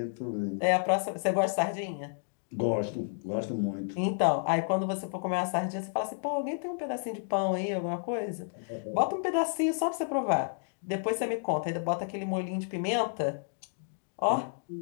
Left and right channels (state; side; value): silent; right; digital silence